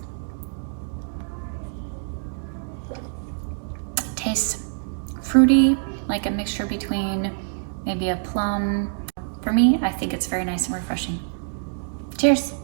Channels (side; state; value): left; silent; digital silence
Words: Tastes fruity, like a mixture between maybe a plum. For me, I think it's very nice and refreshing. Cheers.